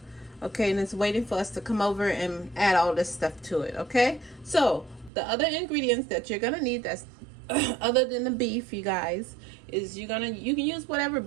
Okay, and it's waiting for us to come over and add all this stuff to it. Okay, so the other ingredients that you're gonna need that's other than the beef, you guys, is you can use whatever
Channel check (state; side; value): drops out; left; at 5.1 s